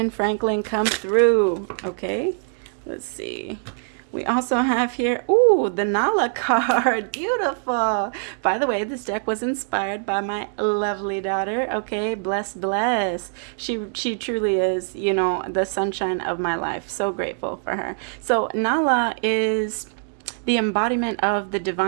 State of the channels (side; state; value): left; silent; digital silence